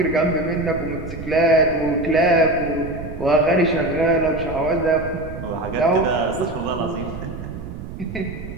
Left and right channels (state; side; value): noise; right; rumble, 10 dB below the sound